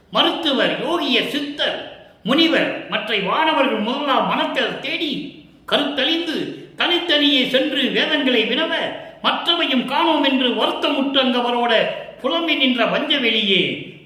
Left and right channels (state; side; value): identical; both; correlation 1.00